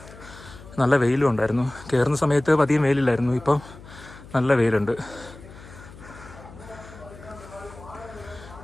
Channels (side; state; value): left; noise; hum, 18 dB below the sound